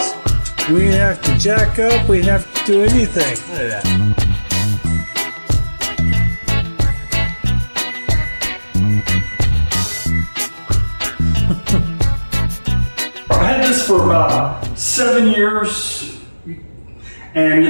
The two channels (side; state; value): both; inverted; correlation -1.00